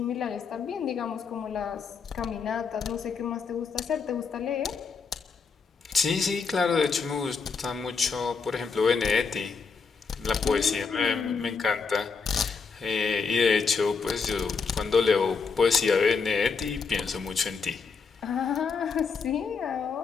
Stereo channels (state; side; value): quieter; right; 5.2 dB